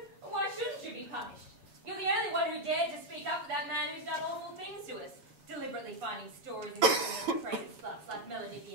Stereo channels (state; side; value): late; left; 7.2 ms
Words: Why shouldn't you be punished? You're the only one who dared to speak up for that man who's done awful things to us, deliberately finding stories and giving crazy sluts like Melody